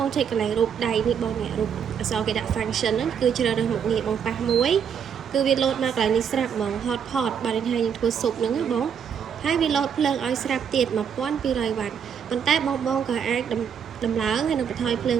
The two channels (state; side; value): quieter; left; 7.6 dB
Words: ងចុចកន្លែងរូបដៃនេះបងនេះរូបអក្សរគេដាក់ function ហ្នឹងគឺជ្រើសរើសមុខងារបងប៉ះមួយគឺវាលោតមកកន្លែងនេះស្រាប់ហ្មង hotpot បាទនេះហើយយើងធ្វើស៊ុបហ្នឹងណាបងហើយវាលោតភ្លើងឲ្យស្រាប់ទៀត1200វ៉ាត់ប៉ុន្តែបងក៏អាចដំឡើងហើយនឹងបន្ថយភ្លើង